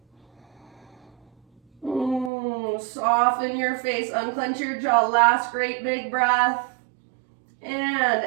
Soften your face, unclench your jaw. Last great big breath. And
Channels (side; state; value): left; drops out; at 2.3 s